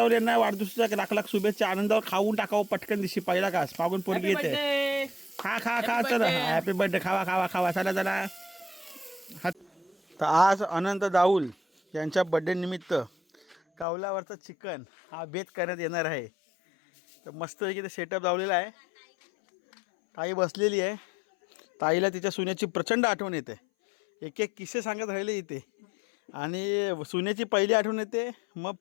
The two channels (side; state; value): right; drops out; at 13.9 s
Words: यांना वाढदिवसाच्या लाख लाख शुभेच्छा. आनंदावर खाऊन टाकावं पटकन दिवशी पहिला घास मागून पोरगी येते. खा खा खा चल हॅपी बर्थडे खावा खावा खावा चला चला. तर आज अनंत दाऊल यांच्या बर्थडे निमित्त कावल्यावरचं चिकन हा बेत करण्यात येणार आहे. तर मस्तपैकी ते सेटअप लावलेला आहे. ताई बसलेली आहे. ताईला तिच्या सुनेची प्रचंड आठवण येते. एक एक किस्से सांगत राहिले इथे. आणि सुनेची पहिली आठवण येते, मग